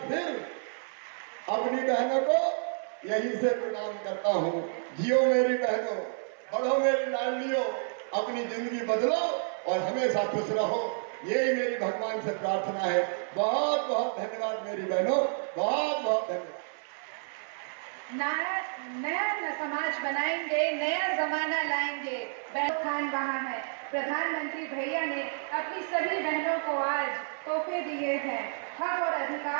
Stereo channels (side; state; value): left; silent; 57 dB below the other